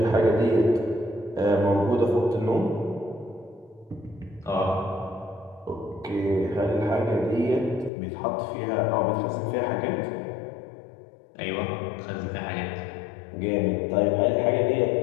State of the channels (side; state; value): right; drops out; at 7.9 s